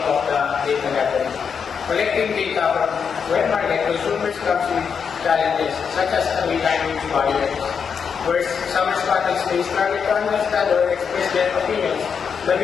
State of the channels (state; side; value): quieter; right; 6.5 dB